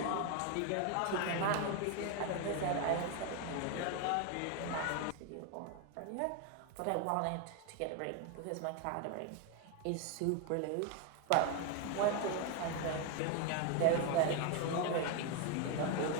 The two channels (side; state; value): both; different; correlation 0.01